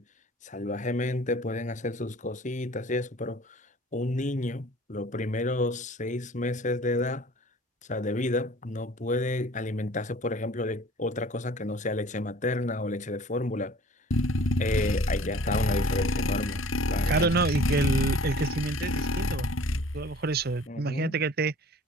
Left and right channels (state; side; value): normal; both; correlation 0.49